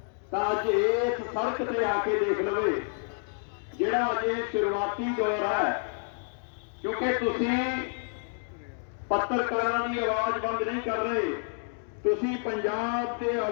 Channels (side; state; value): right; silent; 59 dB below the other